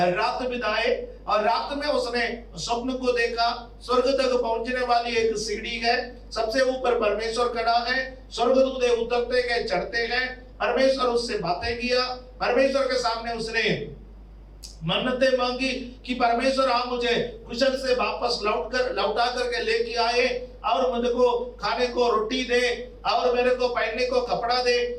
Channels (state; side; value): identical; both; correlation 1.00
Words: रात बिताए, और रात में उसने स्वप्न को देखा। स्वर्ग तक पहुंचने वाली एक सीढ़ी है, सबसे ऊपर परमेश्वर खड़ा है, स्वर्गदूत उतरते गए चढ़ते गए, परमेश्वर उससे बातें किया। परमेश्वर के सामने उसने मन्नतें मांगी कि परमेश्वर आप मुझे कुशल से वापस लौटा करके लेके आए, और मुझे को खाने को रोटी दे, और मेरे को पहनने को कपड़ा दे,